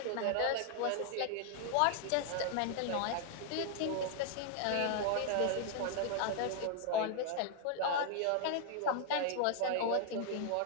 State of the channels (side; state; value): both; different; correlation 0.00